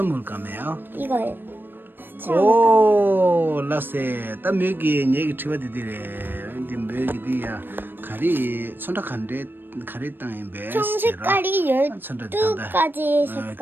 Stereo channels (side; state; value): left; late; 0.095 ms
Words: 물감이에요? 이거요. 오, 라세. 딱 여기 얘기 들어디래. 이제 여기디야 가리 선택한데 가리 땅에 배. 총 색깔이 12가지